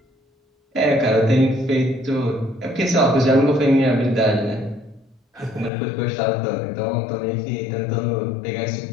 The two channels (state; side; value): drops out; right; at 5.7 s